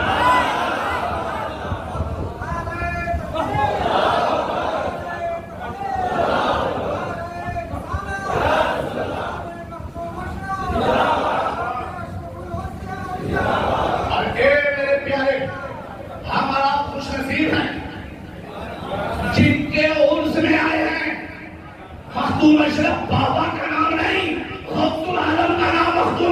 جن کے عرس میں آئے ہیں مخدوم اشرف بابا کا نام نہیں، غوث العالم کا نام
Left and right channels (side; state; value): both; identical; correlation 1.00